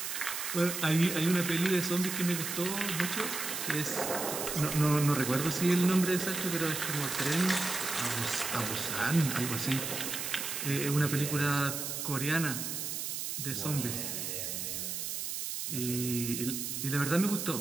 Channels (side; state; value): right; noise; hiss, 4 dB below the sound